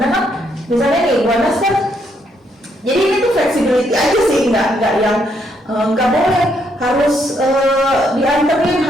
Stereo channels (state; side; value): normal; both; correlation 0.74